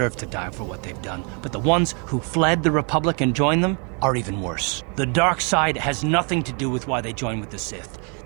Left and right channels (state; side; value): quieter; left; 36.2 dB